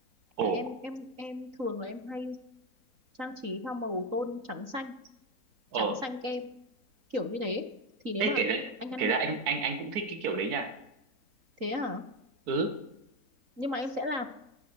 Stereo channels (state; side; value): late; left; 3.9 ms